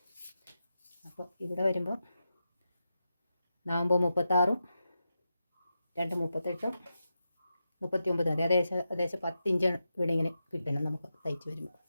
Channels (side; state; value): both; inverted; correlation -0.89